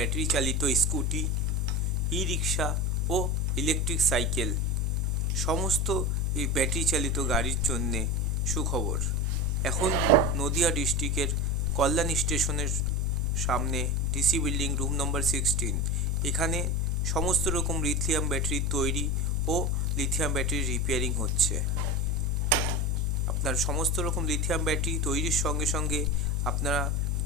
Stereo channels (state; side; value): normal; both; correlation 0.24